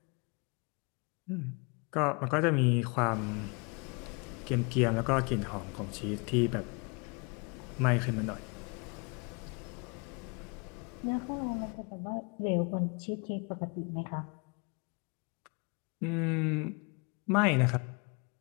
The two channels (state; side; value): quieter; right; 31.7 dB